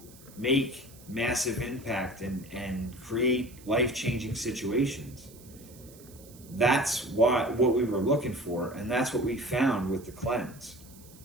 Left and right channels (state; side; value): noise; right; hiss, 22 dB below the sound